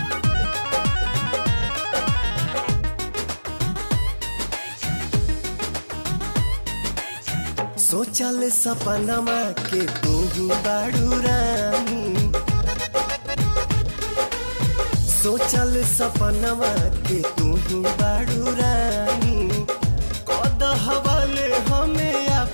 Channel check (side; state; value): both; inverted; correlation -1.00